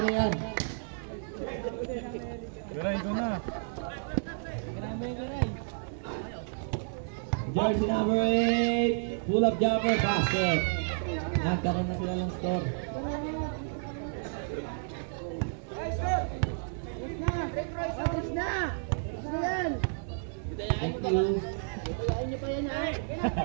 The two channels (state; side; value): silent; left; digital silence